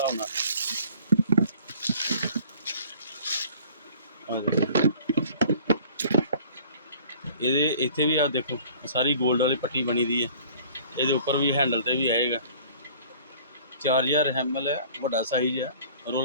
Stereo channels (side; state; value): both; inverted; correlation -0.50